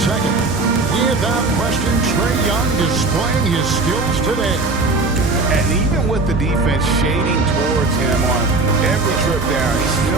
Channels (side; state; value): left; quieter; 3.4 dB